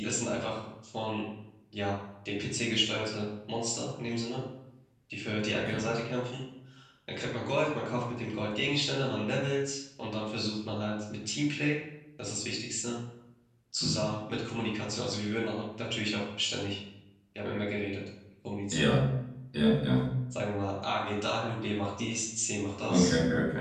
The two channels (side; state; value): both; identical; correlation 1.00